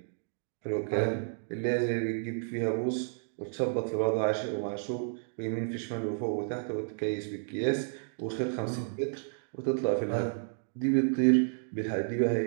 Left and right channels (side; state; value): left; silent; digital silence